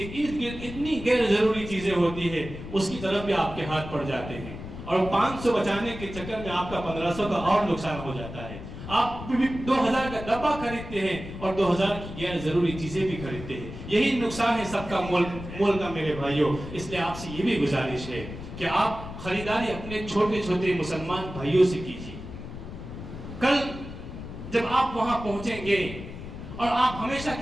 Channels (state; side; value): noise; left; rumble, 11 dB below the sound